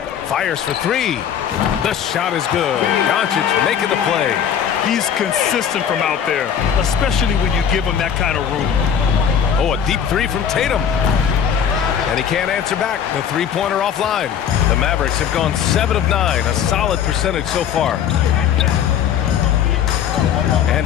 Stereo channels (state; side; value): quieter; right; 8.5 dB